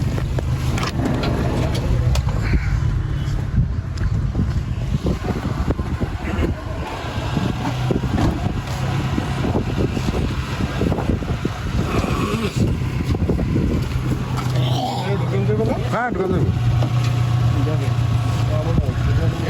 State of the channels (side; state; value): both; identical; correlation 1.00